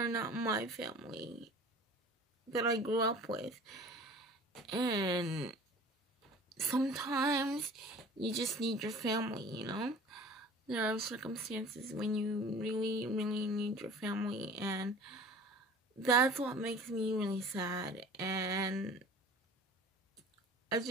not my family that I grew up with. And sometimes you just need your family, There are circumstances when you really, really need your family, and that's what makes me really sad. And I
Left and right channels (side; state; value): both; normal; correlation 0.44